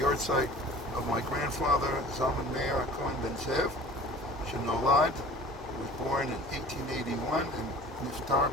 yahrzeit of my grandfather, Zalman Meir Cohen Ben Zev, Shenolad, who was born in 1881 and niftar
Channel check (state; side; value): normal; both; correlation 0.44